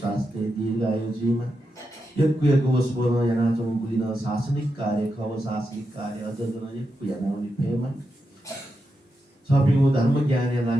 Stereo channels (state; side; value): normal; both; correlation 0.87